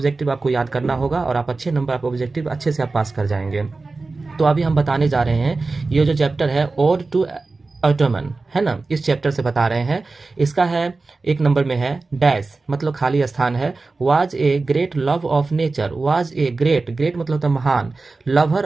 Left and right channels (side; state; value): left; quieter; 3.7 dB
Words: आपको याद करना होगा और आप अच्छे नंबर आप ऑब्जेक्टिव अच्छे से आप पास कर जाएंगे। तो अभी हम बताने जा रहे हैं ये जो चैप्टर है ओड टू ऑटोमन है ना, इस चैप्टर से बता रहे हैं। इसका है 1 नंबर में है डैश मतलब खाली स्थान है। Was a great love of nature, was a great, great मतलब तो महान, लवर